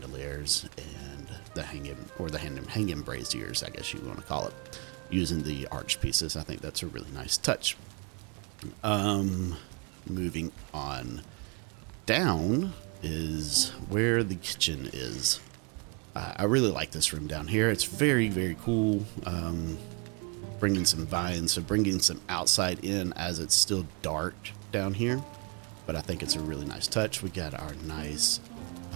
and the hanging braziers, I guess you want to call it, using the arch pieces. I think that's a really nice touch. Moving on down is where the kitchen is. I really like this room down here. It's very, very cool. Bringing some vines, so bringing some outside in as it's still dark down here. But I think it's a really nice touch. We got our nice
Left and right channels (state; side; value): quieter; left; 33.8 dB